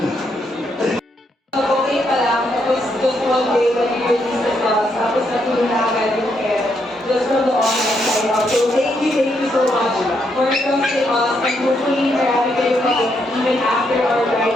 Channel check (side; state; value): both; normal; correlation 0.77